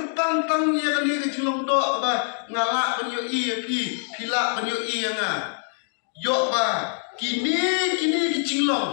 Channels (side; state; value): right; silent; digital silence